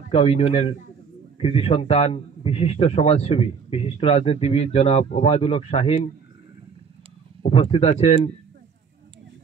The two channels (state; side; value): quieter; left; 6.1 dB